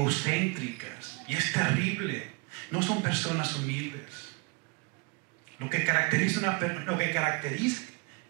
y es terrible. No son personas humildes. Lo que caracteriza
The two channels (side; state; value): left; quieter; 29.2 dB